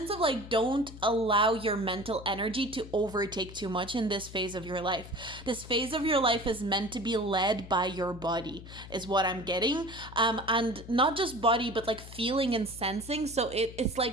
of like, don't allow your mental energy to overtake too much in this phase of your life. This phase of your life is meant to be led by your body, is what I'm getting. And not just body, but like feeling and sensing. So it's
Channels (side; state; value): left; noise; hum, 15 dB below the sound